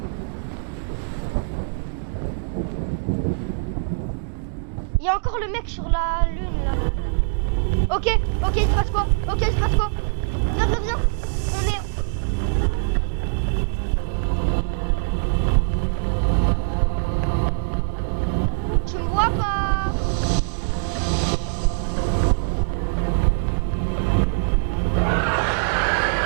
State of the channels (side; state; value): left; silent; digital silence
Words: Il y a encore le mec sur la lune là. Ok, il se passe quoi? Ok, il se passe quoi? Viens. On est... Tu me vois pas?